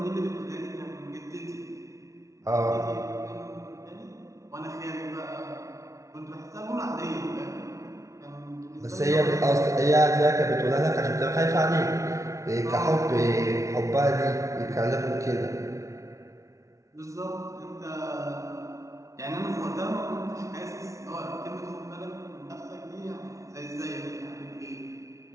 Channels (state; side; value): late; left; 0.15 ms